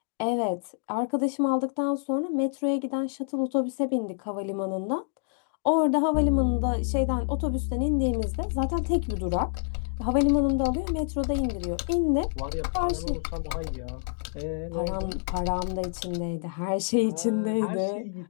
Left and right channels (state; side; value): silent; right; digital silence